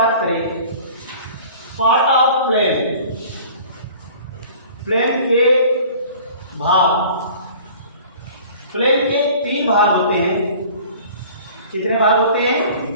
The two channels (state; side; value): inverted; both; correlation -0.46